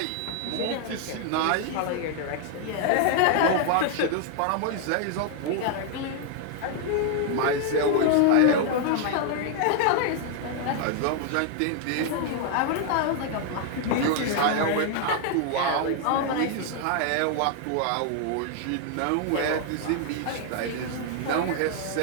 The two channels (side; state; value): both; different; correlation 0.00